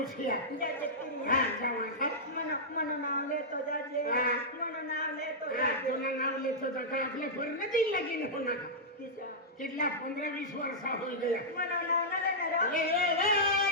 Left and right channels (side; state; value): both; normal; correlation -0.10